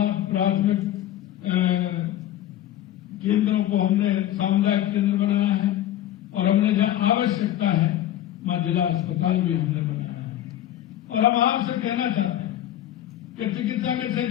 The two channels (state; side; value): quieter; right; 12.5 dB